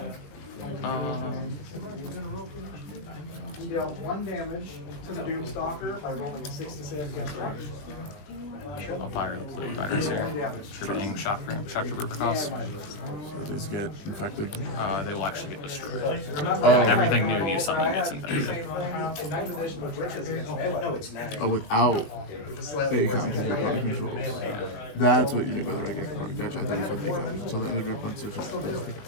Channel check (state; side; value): late; right; 20 ms